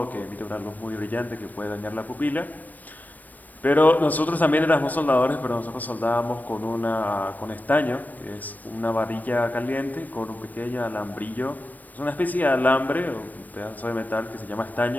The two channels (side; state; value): right; late; 0.083 ms